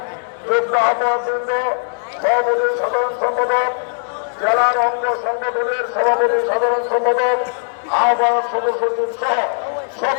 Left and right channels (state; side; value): silent; right; 67 dB below the other